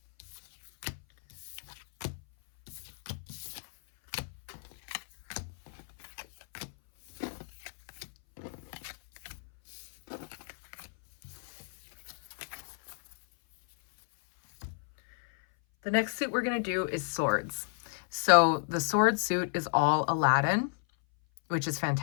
The next suit we're going to do is swords. So the sword suit is all Aladdin, which is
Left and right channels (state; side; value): silent; right; 56 dB below the other